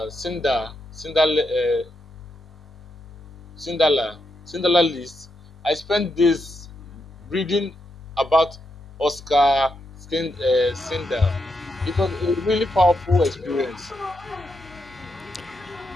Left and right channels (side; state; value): both; normal; correlation 0.83